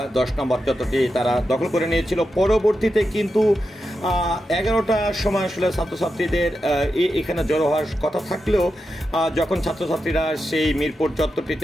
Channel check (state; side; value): normal; both; correlation 0.88